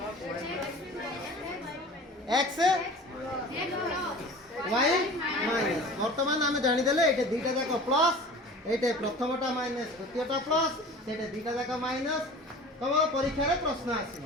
x y মাইনাস বর্তমান আমি জানি দেলে এটা দুইটা যাক প্লাস এইটা প্রথমটা মাইনাস দ্বিতীয়টা প্লাস সেটা দুইটা যাক মাইনাস তবে পরীক্ষারে প্রশ্ন আসিব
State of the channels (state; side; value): normal; both; correlation 0.40